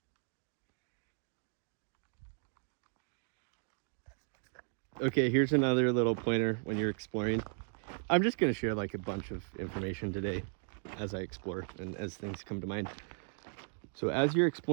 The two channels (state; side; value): silent; left; 54 dB below the other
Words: Okay, here's another little pointer when you're exploring. I'm just going to share like a bunch of information today as I explore and as things come to mind. So as you're